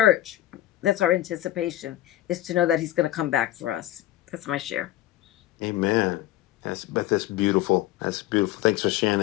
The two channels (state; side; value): quieter; right; 14.2 dB